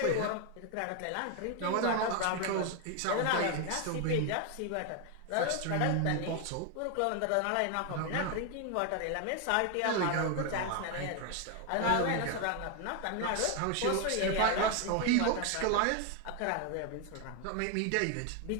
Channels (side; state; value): both; different; correlation 0.01